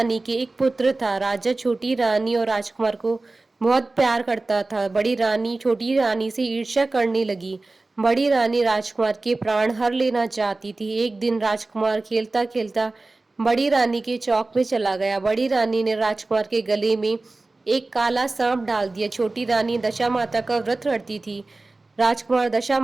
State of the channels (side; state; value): left; quieter; 3.2 dB